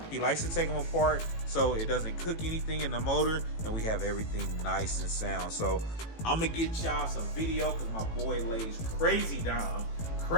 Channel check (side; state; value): right; late; 18 ms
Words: he likes to take them apart so it doesn't cook anything in the motor, and we have everything nice and sound. So I'm gonna get y'all some video because my boy lays crazy down.